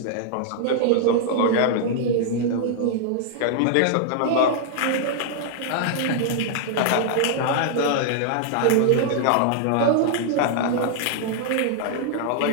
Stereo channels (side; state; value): both; different; correlation 0.00